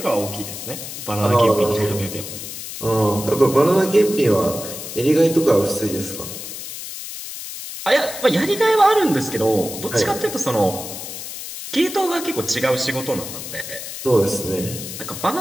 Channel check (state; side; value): noise; left; hiss, 9 dB below the sound